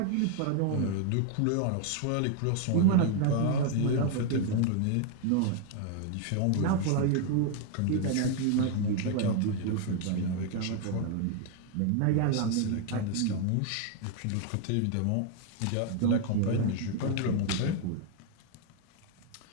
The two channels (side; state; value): both; different; correlation 0.00